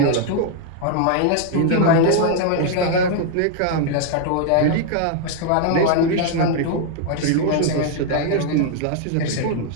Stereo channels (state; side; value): different; both; correlation 0.00